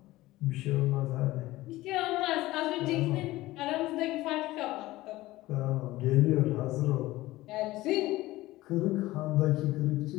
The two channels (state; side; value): quieter; right; 17.8 dB